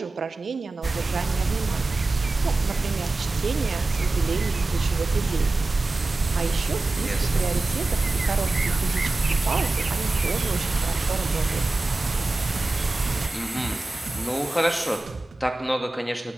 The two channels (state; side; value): quieter; left; 3.1 dB